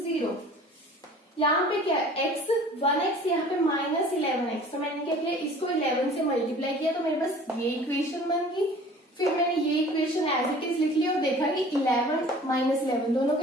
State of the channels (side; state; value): both; normal; correlation 0.47